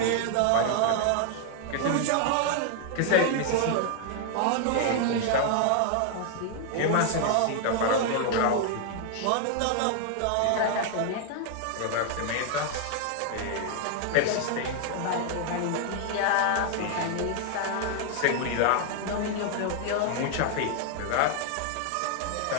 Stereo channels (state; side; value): different; both; correlation 0.00